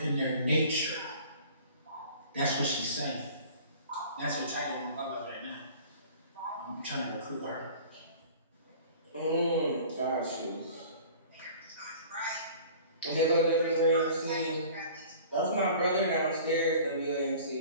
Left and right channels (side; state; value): both; inverted; correlation -0.45